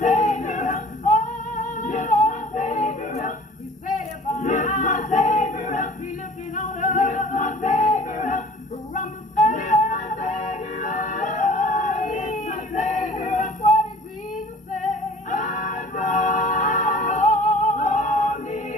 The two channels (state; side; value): normal; both; correlation 0.47